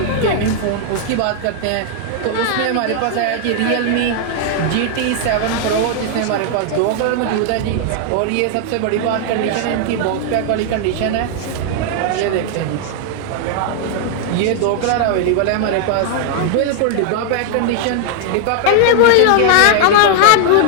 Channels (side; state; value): both; different; correlation 0.00